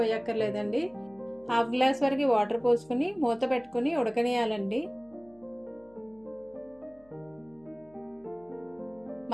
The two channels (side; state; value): left; noise; hum, 29 dB below the sound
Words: హాఫ్ గ్లాస్ వరకు వాటర్ పోసుకుని మూత పెట్టుకుని ఉడకనియాలండి.